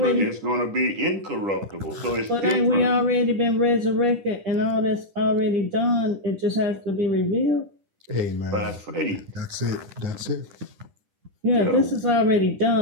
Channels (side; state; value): left; late; 10 ms